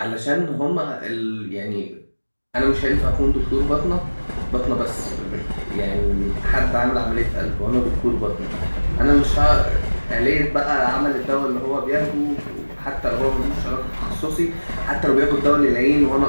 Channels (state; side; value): inverted; both; correlation -1.00